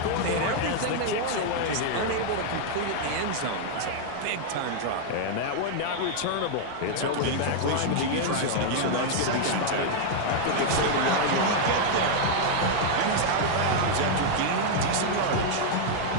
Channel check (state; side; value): different; both; correlation 0.00